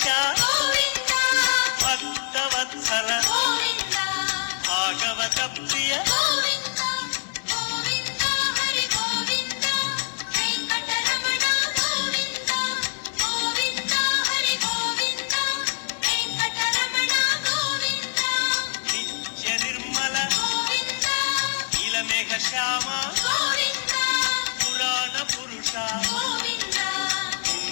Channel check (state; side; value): silent; right; digital silence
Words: వెంకటేశ భక్తవత్సల భాగవత ప్రియ నిత్య నిర్మల నీలమేఘ శ్యామ పురాణ పురుష